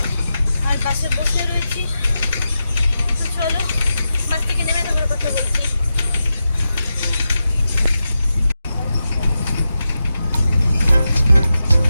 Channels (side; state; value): both; inverted; correlation -0.90